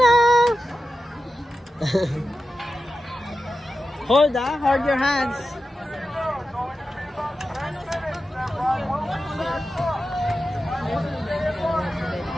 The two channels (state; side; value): normal; both; correlation 0.91